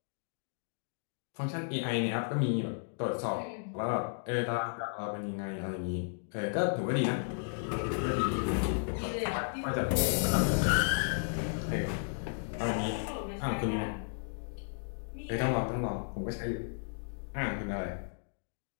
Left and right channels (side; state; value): right; silent; digital silence